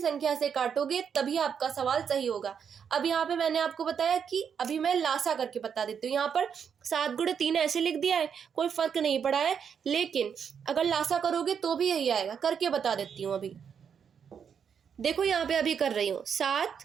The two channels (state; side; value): quieter; left; 7.3 dB